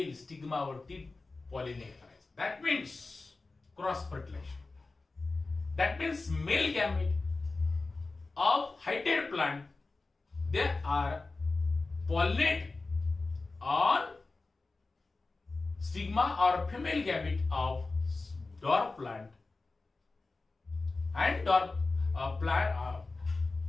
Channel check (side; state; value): right; quieter; 3.6 dB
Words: स्टिग्मावरती पॉलिनेट करायचं. That means cross fertilisation. That means male gamete of heighted plant they are pollinate on stigma or female gamete of dwarf plant and dwarf plant